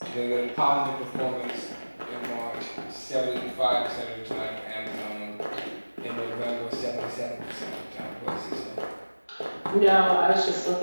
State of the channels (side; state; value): both; inverted; correlation -1.00